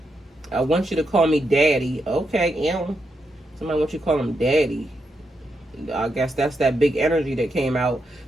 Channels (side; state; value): both; normal; correlation 0.83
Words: want you to call me daddy. Okay, somebody wants you to call him daddy. I guess that's that big energy that came out.